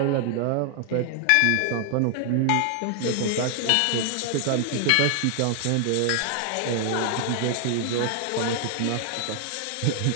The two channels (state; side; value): different; both; correlation 0.00